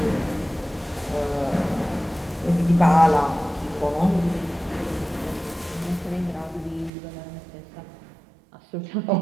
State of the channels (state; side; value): drops out; left; at 6.9 s